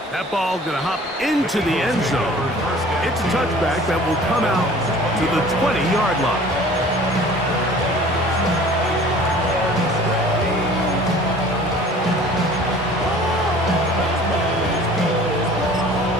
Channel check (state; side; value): normal; both; correlation 0.47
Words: That ball going to hop into the end zone. It's a touchback that will come out to the 20-yard line.